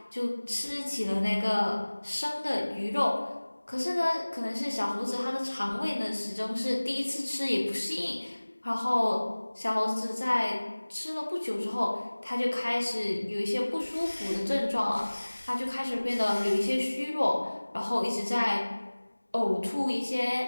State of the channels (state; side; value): inverted; both; correlation -1.00